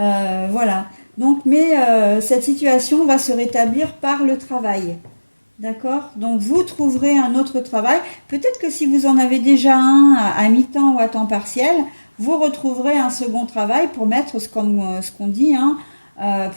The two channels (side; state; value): both; inverted; correlation -1.00